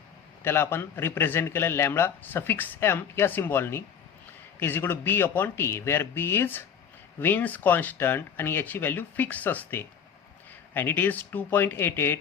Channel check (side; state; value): right; quieter; 7.7 dB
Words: त्याला आपण रिप्रेझेंट केलं लॅम्बडा सफिक्स एम या सिम्बॉलनी, is equal to B upon T, where B is Wien's constant आणि याची व्हॅल्यू फिक्स असते. And it is